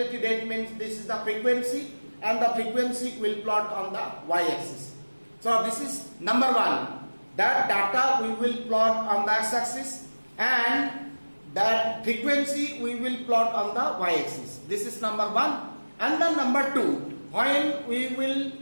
rate means this is the frequency, and the frequency will plot on the y-axis. So this is number 1. That data we will plot on the x-axis, and that frequency we will plot on the y-axis. This is number 1. And then number 2, when we will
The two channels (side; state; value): both; inverted; correlation -1.00